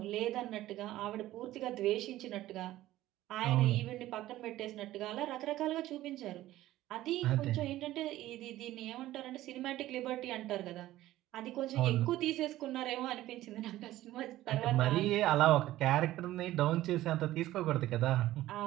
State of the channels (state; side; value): quieter; left; 15.2 dB